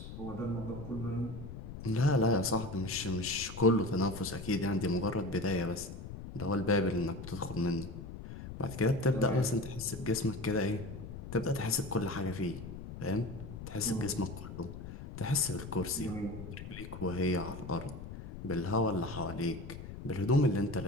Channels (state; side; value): noise; left; rumble, 10 dB below the sound